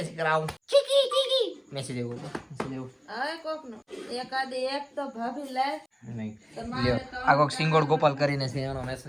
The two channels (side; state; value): both; identical; correlation 1.00